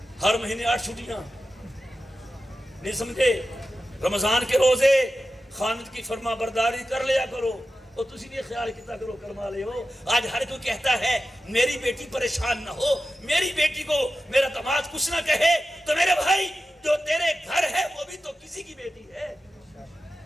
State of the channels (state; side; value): normal; both; correlation 0.93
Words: ہر مہینے 8 چھٹیاں، نہیں سمجھے؟ رمضان کے روزے خامد کی فرما برداری کر لیا کرو، اور تسی بھی خیال کیتا کرو کرما لے ہو۔ آج ہر کوئی کہتا ہے میری بیٹی پریشان نہ ہو، میری بیٹی کو میرا داماد کچھ نہ کہے، تو میرے بھائی جو تیرے گھر ہے وہ بھی تو کسی کی بیٹی ہے،